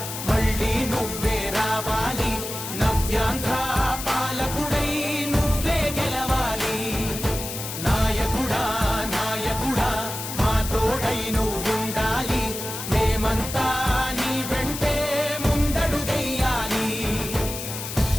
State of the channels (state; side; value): noise; left; hiss, 7 dB below the sound